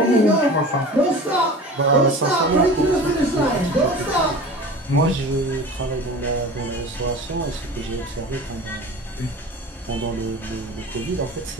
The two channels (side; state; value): both; normal; correlation 0.37